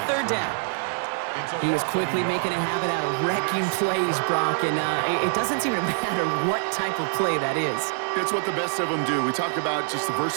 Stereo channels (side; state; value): left; silent; 62 dB below the other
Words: 3rd down. He was quickly making a habit out of wrecking plays, Brock, and it doesn't seem to matter what type of play that is. It's what the best of them do. We talk about just the